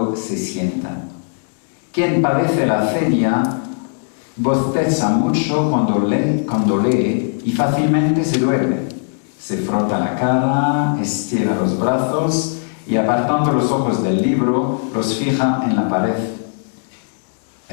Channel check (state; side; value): silent; right; digital silence